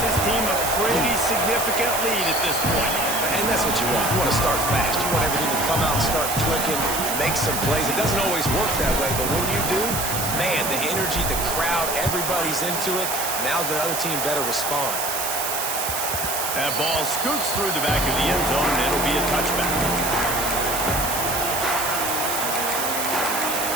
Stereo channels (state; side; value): noise; right; hiss, 2 dB below the sound